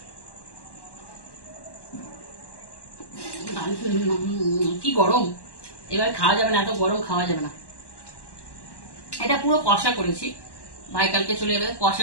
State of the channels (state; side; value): late; right; 1.1 ms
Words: কি গরম, এবার খাওয়া যাবে না, এত গরম খাওয়া যাবে না। এটা পুরো কষা করেছি, ভাই কালকে চলে যাবে,